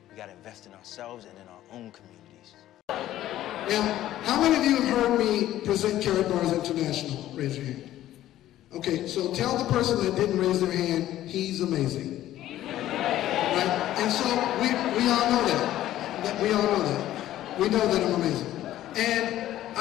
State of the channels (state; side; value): quieter; right; 13.5 dB